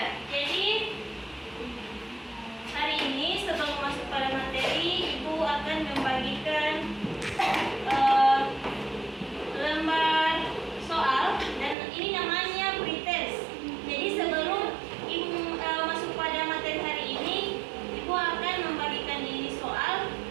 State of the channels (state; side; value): drops out; left; at 11.8 s